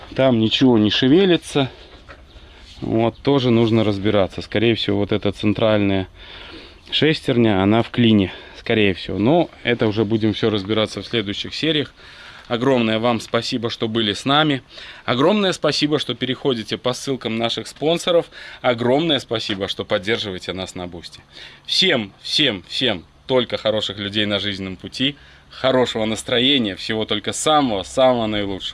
Там ничего не шевелится. Вот тоже нужно разбираться. Скорее всего, вот эта центральная шестерня, она в клине. Скорее всего. Но это уже будем все разбираться в следующих сериях. Огромное вам спасибо, что были с нами. Огромное спасибо, что переходите по ссылкам наших спонсоров. Огромное спасибо, что поддерживаете нас на Бусти. Всем только хороших людей на жизненном пути. Хорошего настроения. Всего только самого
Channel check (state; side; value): identical; both; correlation 1.00